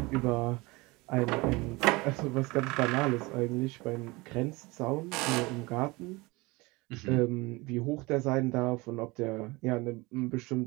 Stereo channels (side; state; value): left; quieter; 23.7 dB